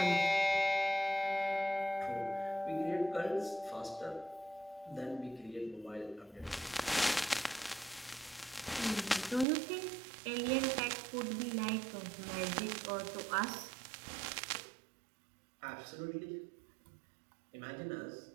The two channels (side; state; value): left; drops out; at 9.5 s